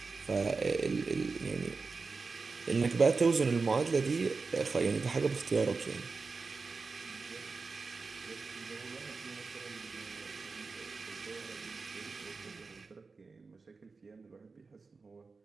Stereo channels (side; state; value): left; quieter; 4.3 dB